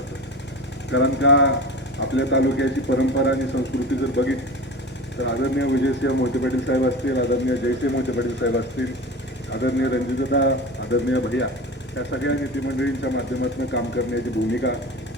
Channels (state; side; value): normal; both; correlation 0.32